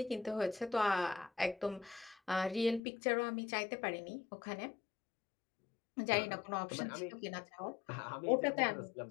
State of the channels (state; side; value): drops out; right; at 2.8 s